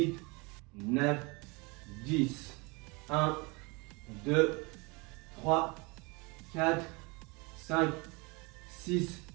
9, 10. 1, 2, 3, 4, 5, 6,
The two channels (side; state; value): left; quieter; 28.0 dB